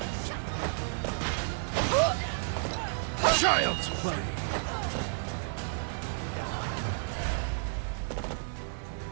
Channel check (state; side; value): silent; left; digital silence